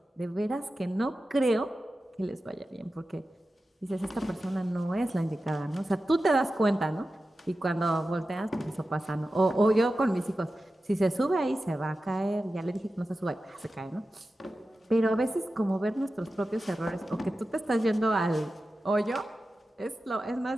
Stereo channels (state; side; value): normal; both; correlation 0.93